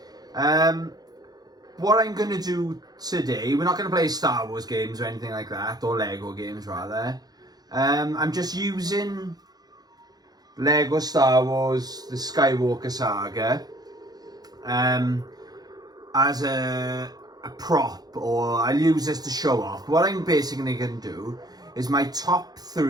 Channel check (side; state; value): left; late; 0.19 ms